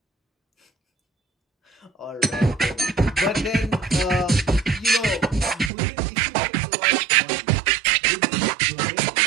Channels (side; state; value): left; drops out; at 5.7 s